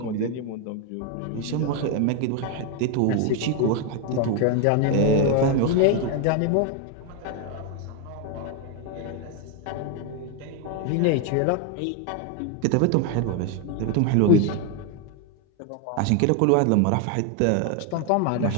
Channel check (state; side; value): different; both; correlation 0.01